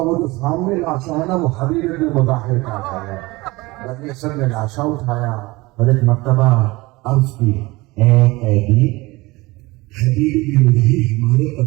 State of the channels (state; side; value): quieter; left; 21.8 dB